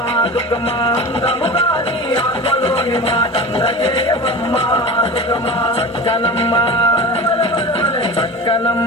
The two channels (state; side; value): normal; both; correlation 0.32